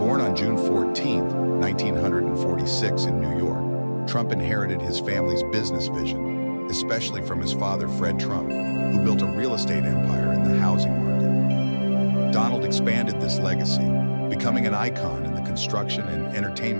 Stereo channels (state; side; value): inverted; both; correlation -1.00